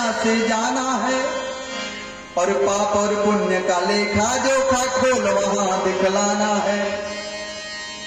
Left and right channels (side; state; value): both; identical; correlation 1.00